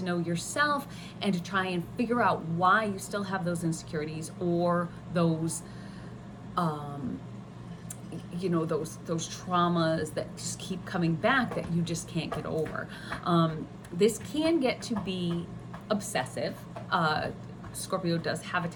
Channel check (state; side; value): identical; both; correlation 1.00